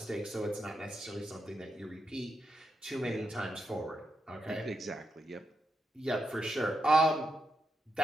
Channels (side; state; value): both; normal; correlation 0.84